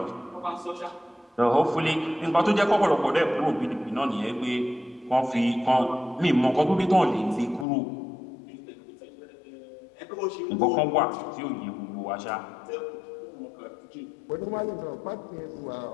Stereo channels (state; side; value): drops out; right; at 7.7 s